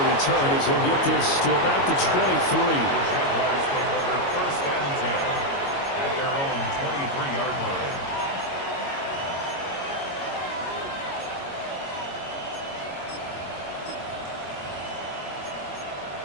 return as he'll get this to about the 23. The Jaguars take over 1st and 10 at their own 23-yard line.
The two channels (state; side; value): late; right; 22 ms